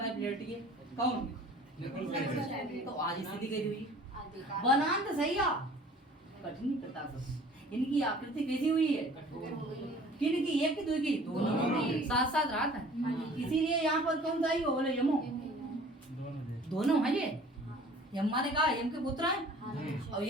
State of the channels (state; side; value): normal; both; correlation 0.49